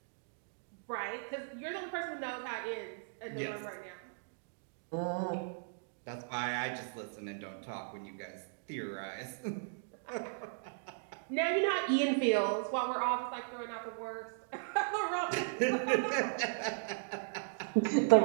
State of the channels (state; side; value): silent; left; digital silence